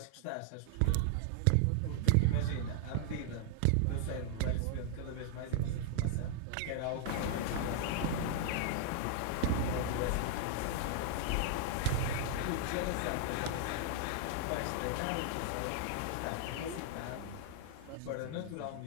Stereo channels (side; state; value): both; different; correlation 0.00